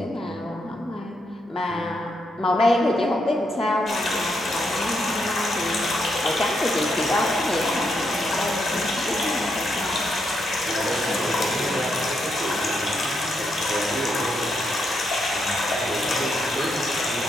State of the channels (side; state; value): both; normal; correlation 0.79